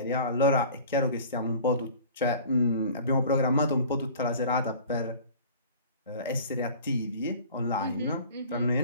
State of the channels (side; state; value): both; inverted; correlation -0.44